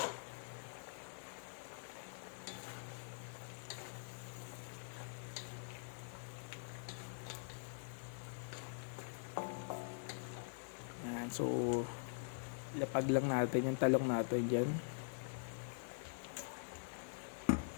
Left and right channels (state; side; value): silent; right; digital silence